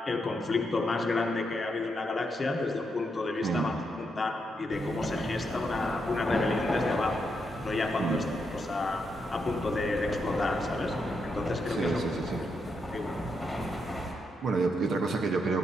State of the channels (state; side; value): normal; both; correlation 0.81